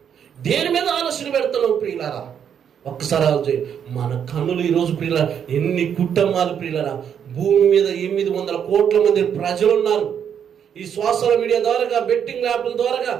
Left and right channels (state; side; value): quieter; left; 8.3 dB